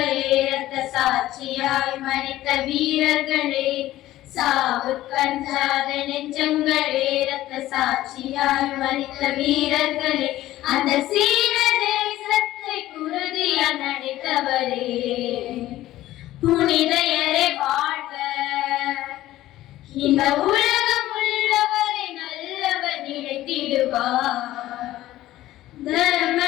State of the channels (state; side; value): quieter; right; 15.0 dB